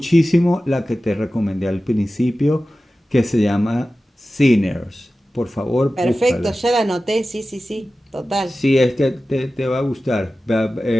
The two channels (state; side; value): normal; both; correlation 0.95